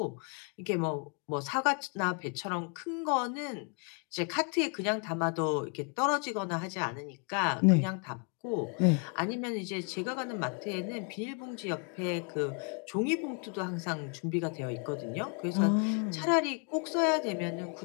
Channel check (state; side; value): quieter; right; 38.5 dB